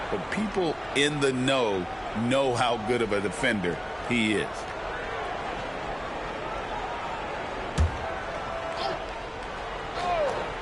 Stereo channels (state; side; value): identical; both; correlation 1.00